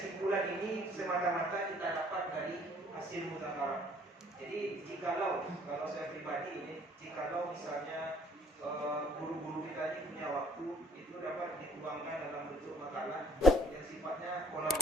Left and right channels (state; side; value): normal; both; correlation 0.61